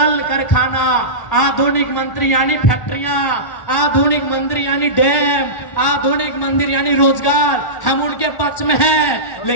कारखाना, आधुनिक मंदिर यानी फैक्ट्रियां, आधुनिक मंदिर यानी डैम, आधुनिक मंदिर यानी रोजगार, हम उनके पक्ष में हैं।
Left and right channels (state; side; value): late; right; 1.4 ms